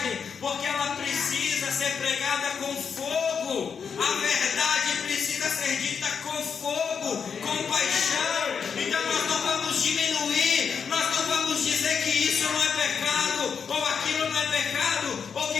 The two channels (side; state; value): right; quieter; 6.5 dB